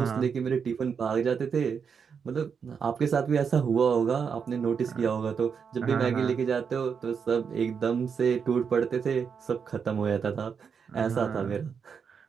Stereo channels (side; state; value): left; quieter; 6.5 dB